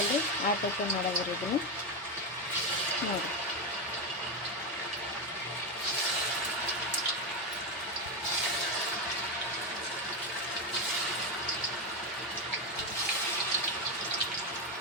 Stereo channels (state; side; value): normal; both; correlation 0.10